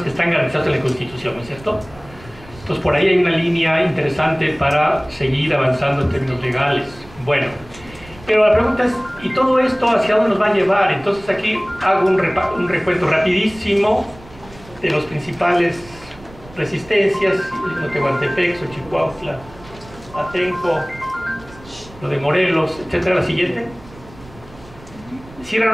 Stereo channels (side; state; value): right; noise; rumble, 21 dB below the sound